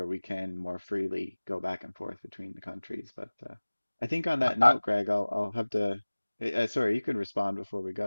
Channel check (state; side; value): inverted; both; correlation -1.00